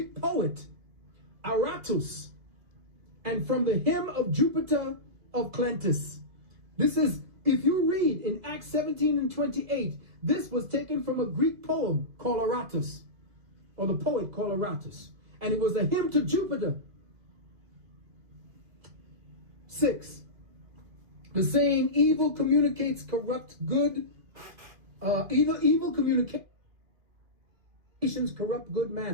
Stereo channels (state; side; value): late; left; 2.7 ms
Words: poet Aratus, and from the hymn of Jupiter of Clentus. This is, if you read in Acts 17 and 28, this was taken from a Greek poem called Aratus. or the poet Coloratus, and it was a hymn to Jupiter. 6. The saying, evil communicates corrupt good, evil communications corrupt good